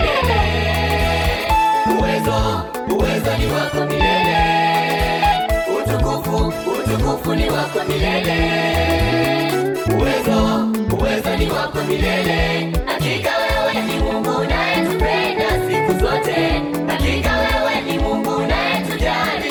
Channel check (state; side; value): identical; both; correlation 1.00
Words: Uwezo ni wako milele. Utukufu ni wako milele. Uwezo ni wako milele. Hakika wewe ni Mungu unayetupenda siku zote. Hakika wewe ni Mungu unayetujali